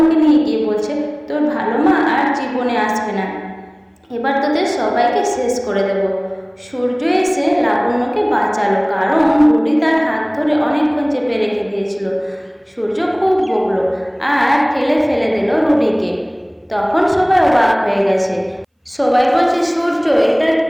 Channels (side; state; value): both; identical; correlation 1.00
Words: নিয়ে গিয়ে বলছে তোর ভালো মা আর জীবনে আসবে না। এবার তোদের সবাইকে শেষ করে দেব। সূর্য এসে লাবণ্যকে বাঁচালো, কারণ রুটি তার হাত ধরে অনেকক্ষণ চেপে রেখে দিয়েছিল। সূর্য খুব বকলো আর ঠেলে ফেলে দিল রুটিকে। তখন সবাই অবাক হয়ে গেছে। সবাই বলছে, সূর্য এটা